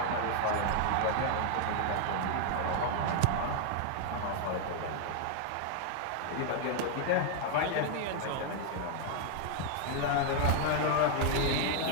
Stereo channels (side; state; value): both; different; correlation 0.00